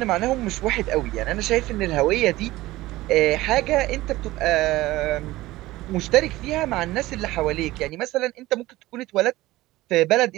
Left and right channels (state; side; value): quieter; left; 17.8 dB